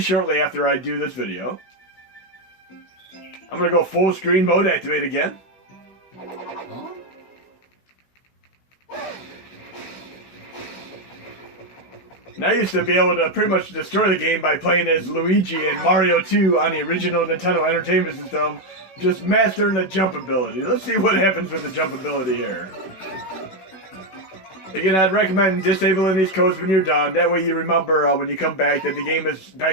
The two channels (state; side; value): late; right; 16 ms